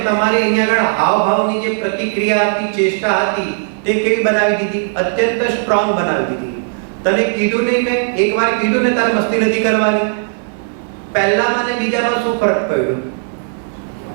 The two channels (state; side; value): silent; left; digital silence